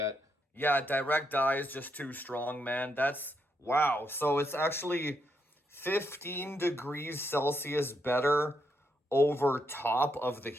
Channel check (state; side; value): normal; both; correlation 0.79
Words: Yeah, direct die is just too strong, man. That's wow. So it's actually 15 degrees Celsius better over top of the